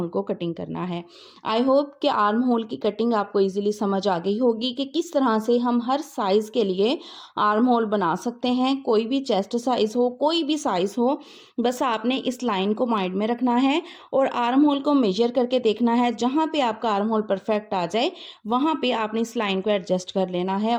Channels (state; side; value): identical; both; correlation 1.00